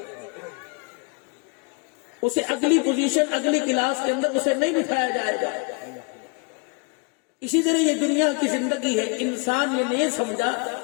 اسے اگلی پوزیشن اگلی کلاس کے اندر اسے نہیں بٹھایا جائے گا اسی طرح یہ دنیا کی زندگی ہے انسان یہ نہیں سمجھا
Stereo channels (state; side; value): quieter; right; 33.5 dB